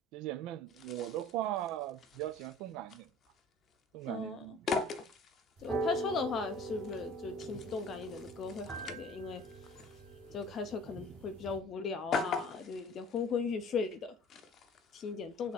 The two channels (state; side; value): normal; both; correlation 0.46